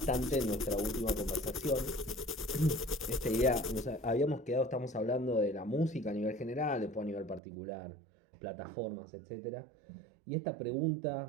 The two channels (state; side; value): drops out; left; at 7.4 s